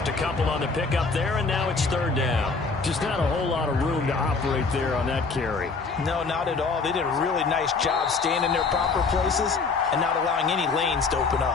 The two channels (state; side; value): quieter; right; 4.4 dB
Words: a couple on the pickup there, and now it's third down. Just not a whole lot of room to operate there on that carry. No, not at all. They did a really nice job staying in their proper places and not allowing any lanes to open